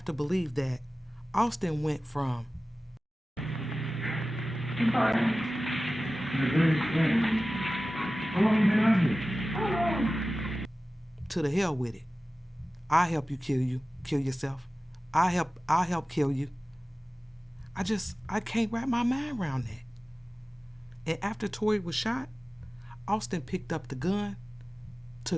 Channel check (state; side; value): normal; both; correlation 0.96